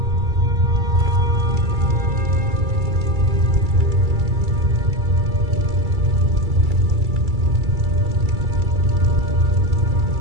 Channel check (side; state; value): left; late; 2.3 ms